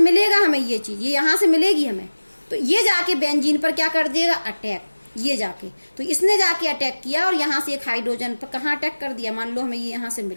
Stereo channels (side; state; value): both; inverted; correlation -1.00